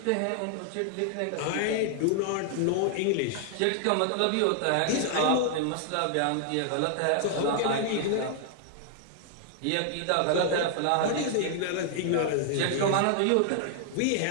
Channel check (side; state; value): both; different; correlation 0.00